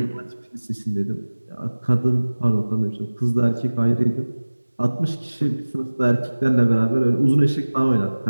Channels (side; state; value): both; inverted; correlation -1.00